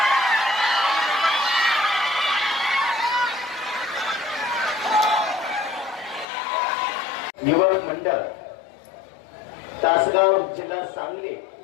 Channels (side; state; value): right; drops out; at 6.2 s